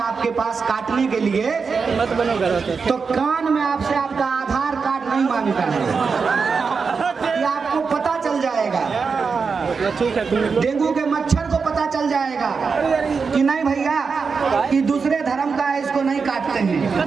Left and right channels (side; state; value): left; quieter; 5.2 dB